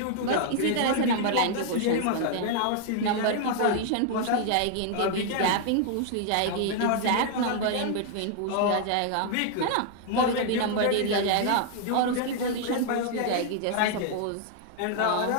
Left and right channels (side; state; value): both; different; correlation 0.00